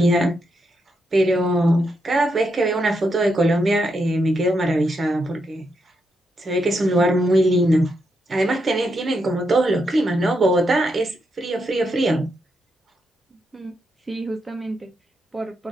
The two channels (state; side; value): normal; both; correlation 0.82